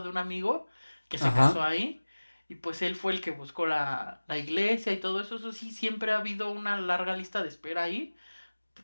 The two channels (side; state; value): both; inverted; correlation -1.00